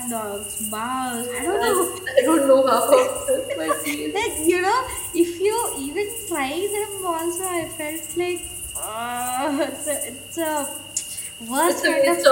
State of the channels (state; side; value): identical; both; correlation 1.00